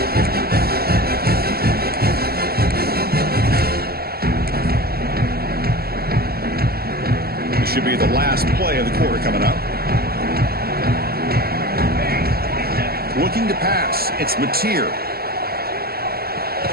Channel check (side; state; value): left; late; 0.45 ms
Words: This should be the last play of the quarter coming up. Looking to pass. It's Mateer.